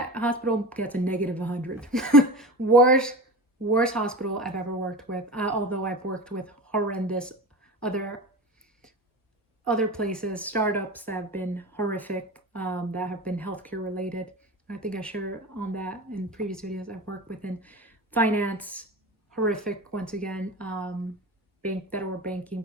hospital gets a -100. Worst worst hospital I've ever worked with, although I've worked with horrendous other places, startups that have been horrific, that have been healthcare related. I think I shared on that in previous videos. I've worked within finance, horrific once again, federal banking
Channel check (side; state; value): both; normal; correlation 0.30